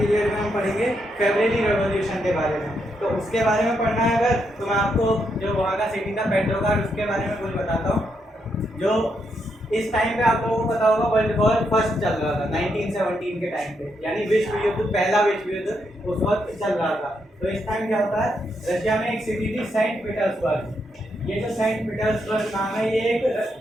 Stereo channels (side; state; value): both; normal; correlation 0.80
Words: में हम पढ़ेंगे फरवरी रेवोल्यूशन के बारे में। तो उसके बारे में पढ़ना है अगर, तो मैं आपको जो वहाँ का सिटी था पेट्रोग्राड उसके बारे में कुछ बताता हूँ। जो इस टाइम पे आप लोगों को पता होगा वर्ल्ड वॉर फर्स्ट चल रहा था 1917 के टाइम पे, यानी विश्व युद्ध, पहला विश्व युद्ध उस वक्त चल रहा था। तो इस टाइम क्या होता है, रशिया में एक सिटी थी सेंट पीटर्सबर्ग। ये जो सेंट पीटर्सबर्ग नाम है ये